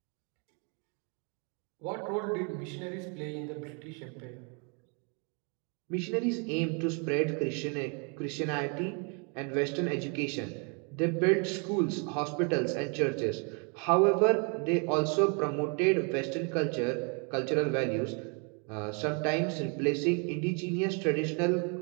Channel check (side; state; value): left; quieter; 35.8 dB